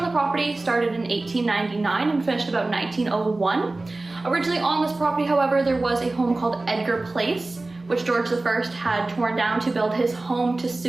the property started in 1899 and finished about 1901. Originally on this property, however, there was a home called Edgar Place, which George I had torn down to build his home to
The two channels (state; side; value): quieter; left; 3.1 dB